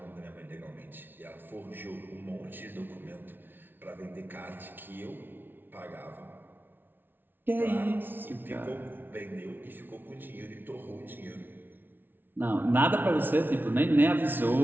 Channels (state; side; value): late; left; 0.098 ms